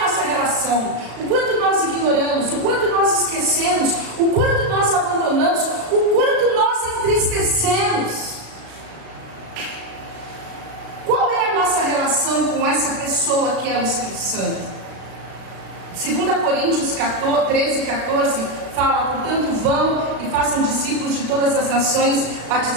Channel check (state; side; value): late; left; 36 ms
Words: relação? O quanto nós ignoramos, o quanto nós esquecemos, o quanto nós abandonamos, o quanto nós entristecemos. Qual é a nossa relação com essa pessoa que é o Espírito Santo? 2 Coríntios 13:14 fala: portanto vão e façam discípulos de todas as nações,